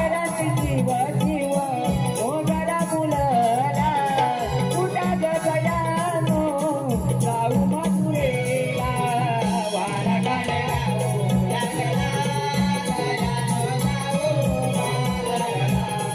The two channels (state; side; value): identical; both; correlation 1.00